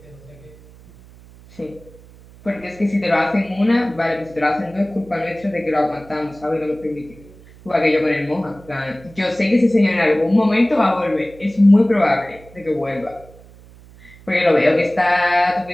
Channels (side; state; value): right; noise; hum, 23 dB below the sound